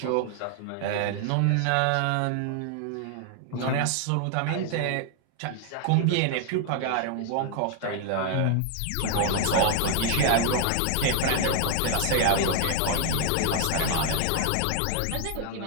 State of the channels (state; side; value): different; both; correlation 0.00